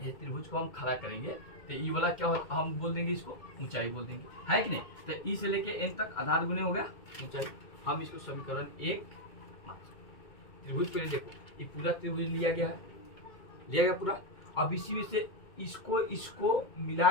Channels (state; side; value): late; right; 2.1 ms